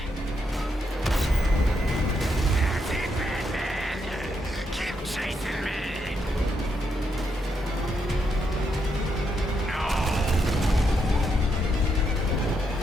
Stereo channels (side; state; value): both; normal; correlation 0.79